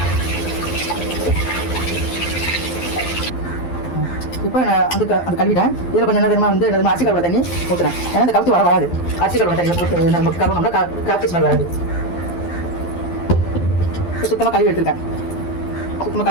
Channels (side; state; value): right; late; 12 ms